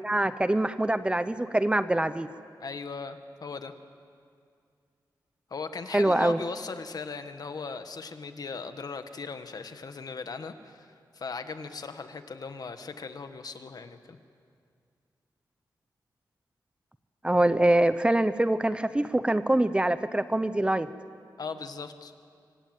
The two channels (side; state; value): both; normal; correlation 0.93